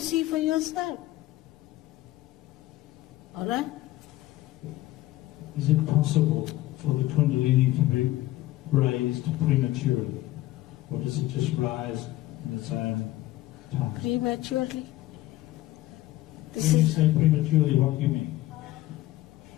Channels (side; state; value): right; quieter; 16.4 dB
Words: for yourself. All right? Is it possible for the Kundalini to be raised prematurely? Or does it just rise in its own time? Prematurely? When you say prematurely, what do you mean?